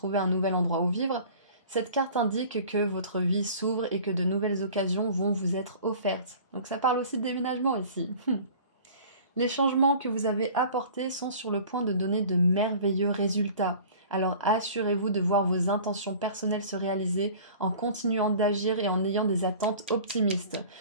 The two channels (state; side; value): inverted; both; correlation -0.44